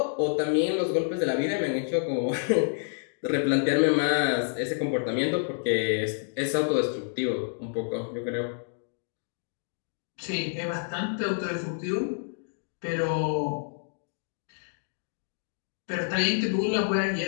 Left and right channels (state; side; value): silent; right; digital silence